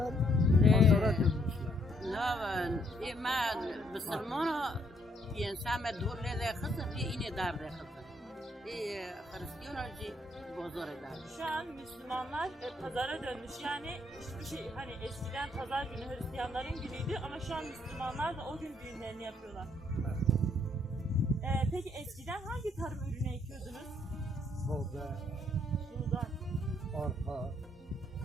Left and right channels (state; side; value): normal; both; correlation 0.70